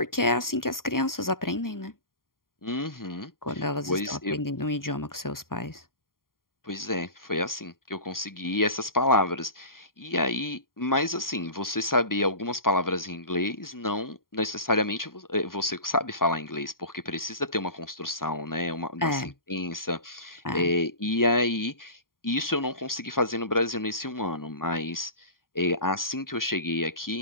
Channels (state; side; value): late; right; 0.91 ms